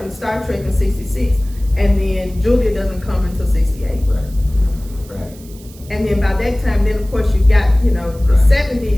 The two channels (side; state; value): right; noise; hiss, 23 dB below the sound